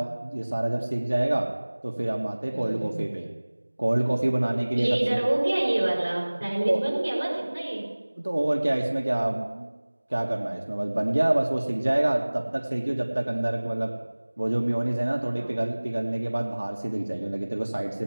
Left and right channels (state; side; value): inverted; both; correlation -1.00